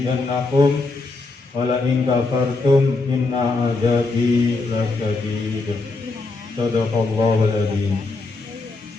wa la in kafartum inna azabi lasyadid. Shadaqallahul adzim.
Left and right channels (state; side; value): quieter; right; 3.6 dB